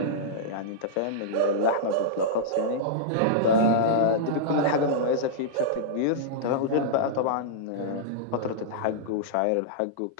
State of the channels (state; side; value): different; both; correlation -0.03